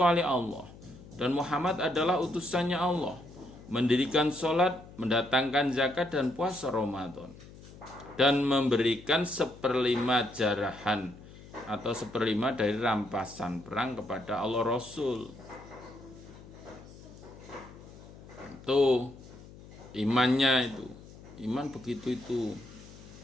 Allah dan Muhammad adalah utusannya Allah, mendirikan sholat, mendatangkan zakat dan puasa Ramadan, dan memberikan 1/5 jarahan atau 1/5 dari rampasan perang kepada Allah Rasul. Itu imannya itu, iman begitu itu.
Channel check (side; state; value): left; noise; hum, 18 dB below the sound